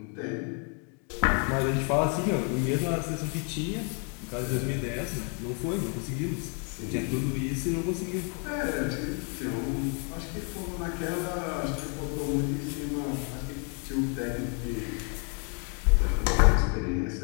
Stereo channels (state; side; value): quieter; right; 37.5 dB